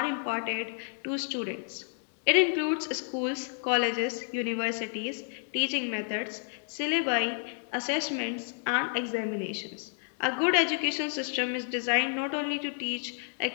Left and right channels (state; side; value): silent; right; 57 dB below the other